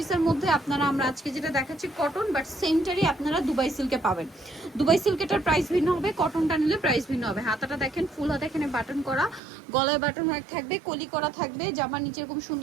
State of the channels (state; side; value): drops out; left; at 9.4 s